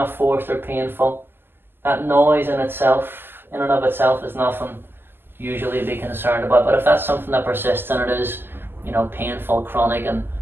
forced or painful. That noise in and of itself is nothing usually to be concerned about. But if that's something that persists and it is, painful, chronic and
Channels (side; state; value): left; late; 0.10 ms